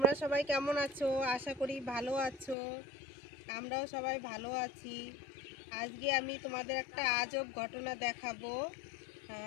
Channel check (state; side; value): drops out; right; at 2.6 s